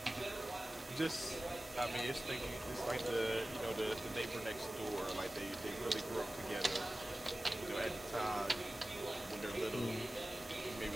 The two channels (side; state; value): both; normal; correlation 0.97